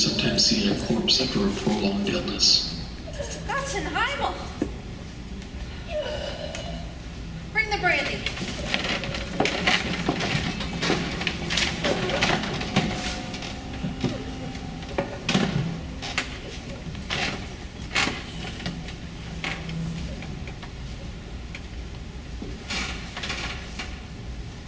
see in a corpse after a prolonged illness. That's in Heimel. Bring the brandy.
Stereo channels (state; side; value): identical; both; correlation 1.00